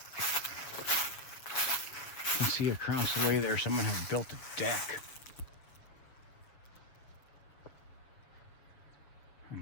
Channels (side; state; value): right; late; 7.4 ms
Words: See across the way there, someone has built a deck. I